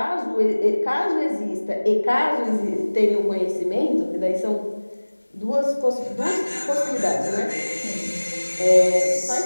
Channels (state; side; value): inverted; both; correlation -1.00